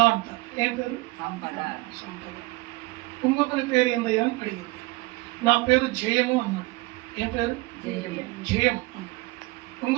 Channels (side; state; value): left; quieter; 22.5 dB